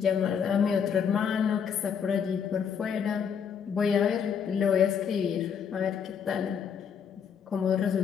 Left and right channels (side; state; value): right; quieter; 7.2 dB